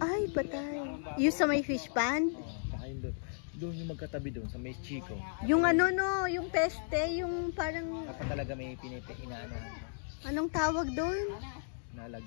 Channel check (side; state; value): right; silent; digital silence